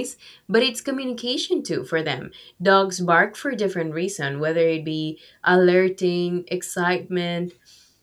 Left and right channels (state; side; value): identical; both; correlation 1.00